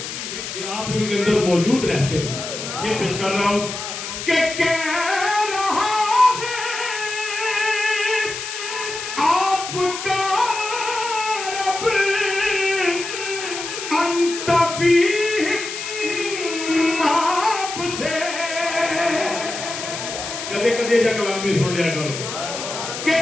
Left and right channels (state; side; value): noise; left; hiss, 7 dB below the sound